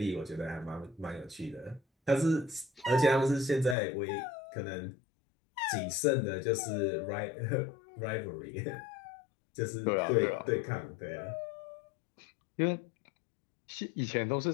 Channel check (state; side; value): drops out; right; at 3.8 s